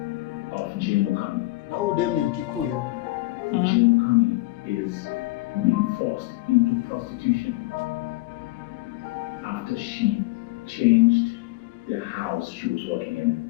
of Jane Mukami. Na huyu dem ni Mkikuyu. Jane Mukami is being forced into prostitution after she changed the house she was working in.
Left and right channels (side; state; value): right; quieter; 20.2 dB